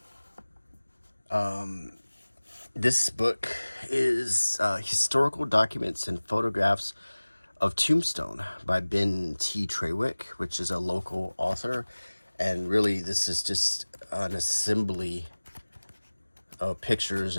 This book is historical documents and photographs of Tombstone by Ben T. Trawick, which is a local author. And really, this is just an assembly of pictures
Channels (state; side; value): inverted; both; correlation -1.00